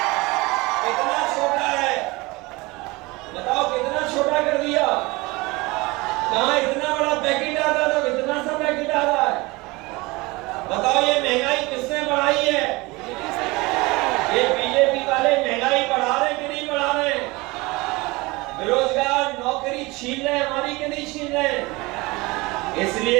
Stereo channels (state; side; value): quieter; left; 23.3 dB